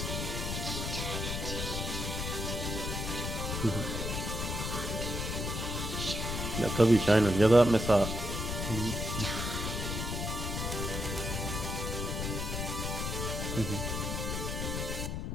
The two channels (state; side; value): noise; left; rumble, 3 dB below the sound